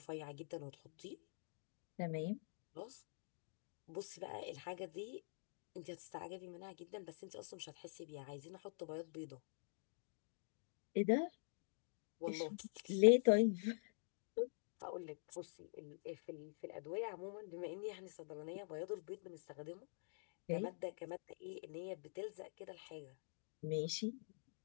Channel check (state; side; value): silent; right; digital silence